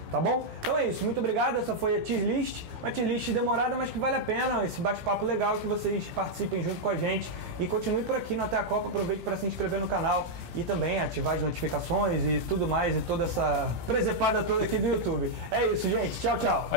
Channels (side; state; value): left; late; 17 ms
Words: Tá bom? Então é isso, muito obrigado, essa foi a tier list, uma tier list demorada, mas que vale a pena, esse bate-papo legal, que vocês participem junto com a gente e continue por aqui no Até a Copa, aproveite para se inscrever no canal e também ativar as notificações e tudo mais, e toda essa presepada toda aqui do YouTube. É isso, gente, tchau, tchau.